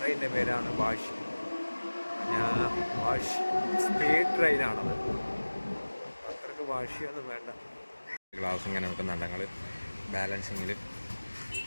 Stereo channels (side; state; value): both; inverted; correlation -1.00